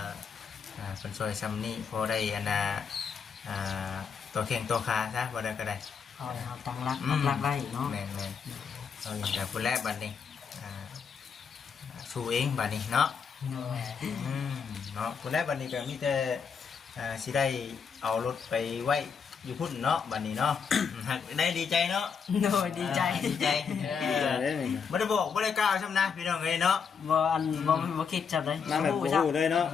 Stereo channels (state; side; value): quieter; right; 6.3 dB